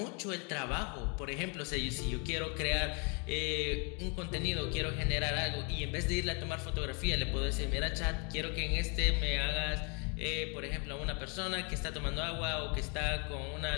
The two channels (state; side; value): quieter; right; 35.2 dB